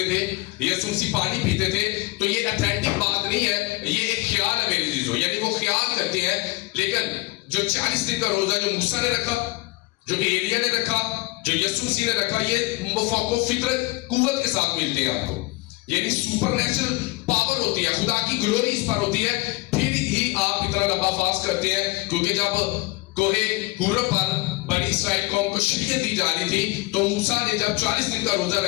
تھے, یسوع مسیح پانی پیتے تھے. تو یہ اتھینٹک بات نہیں ہے, یہ ایک خیال ہے میرے عزیزو. یعنی وہ خیال کرتے ہیں. لیکن جو 40 دن کا روزہ جو موسیٰ نے رکھا, جو ایلیا نے رکھا, جو یسوع مسیح نے رکھا, یہ مفاق و فطرت قوت کے ساتھ ملتے ہیں آپ کو. یعنی سپر نیچرل پاور ہوتی ہے, خدا کی گلوری اس پر ہوتی ہے, پھر ہی آپ اتنا لمبا فاسٹ کرتے ہیں. کیونکہ جب کوہ حور پر بنی اسرائیل قوم کو شریعت دی جا رہی تھی تو موسیٰ نے جب 40 دن کا روزہ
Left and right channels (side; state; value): right; quieter; 22.1 dB